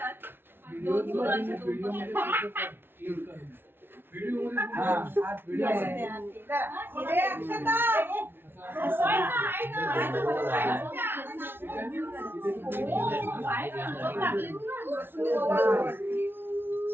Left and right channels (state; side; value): late; left; 0.11 ms